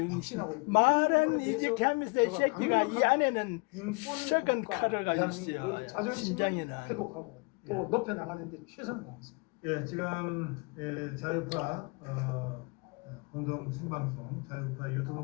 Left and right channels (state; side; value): quieter; right; 30.5 dB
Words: 확신하고 있습니다. 말은 이직하면서 이 새끼가 이 안에는 썩은 칼을 가지고 있어요. 자존심을 심장에는. 회복하고 또 높여나가는데 최선을 다했습니다. 예, 지금 자유파 공동 생방송, 자유파 유튜브